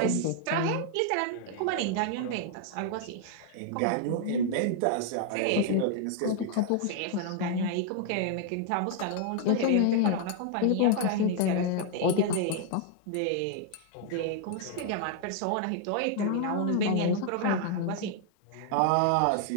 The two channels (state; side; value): different; both; correlation 0.00